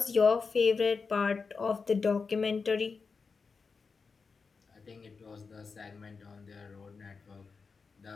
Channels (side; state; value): right; quieter; 4.9 dB